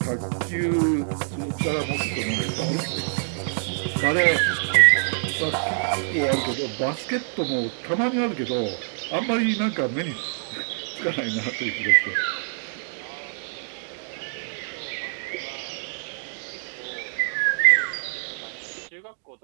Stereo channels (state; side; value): silent; left; digital silence